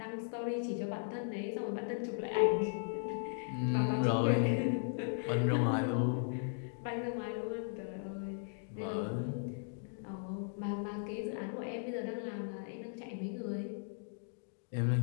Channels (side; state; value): right; silent; digital silence